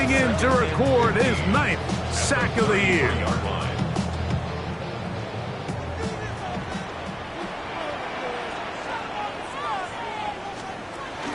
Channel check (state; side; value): identical; both; correlation 1.00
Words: in to record his 9th sack of the year.